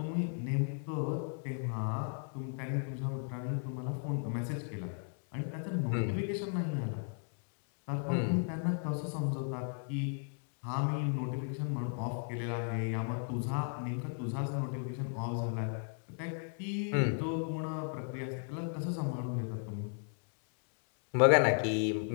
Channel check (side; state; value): right; silent; 54 dB below the other